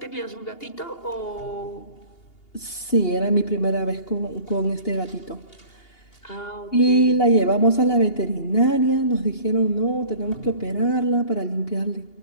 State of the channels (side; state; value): right; late; 2.8 ms